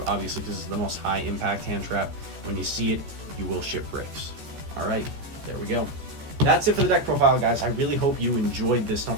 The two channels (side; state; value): left; late; 14 ms